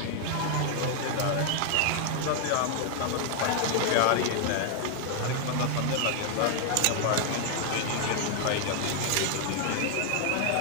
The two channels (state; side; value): different; both; correlation 0.00